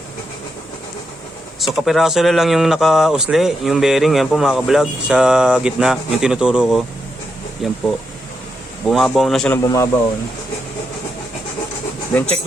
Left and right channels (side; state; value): both; normal; correlation 0.83